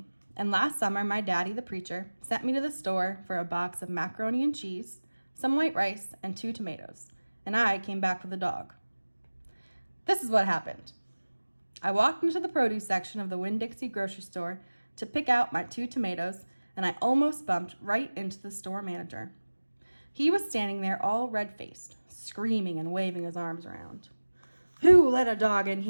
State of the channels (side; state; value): both; inverted; correlation -1.00